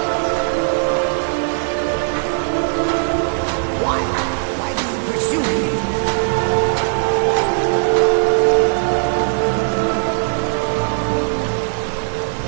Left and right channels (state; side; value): silent; left; digital silence